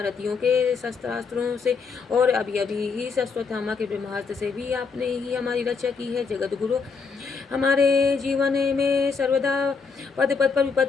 के शस्त्रास्त्रों से और अभी अभी ही अश्वत्थामा के ब्रह्मास्त्र से भी आपने ही हमारी रक्षा की है। जगत गुरु, हमारे जीवन में सर्वदा पद पद पर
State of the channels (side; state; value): right; quieter; 5.1 dB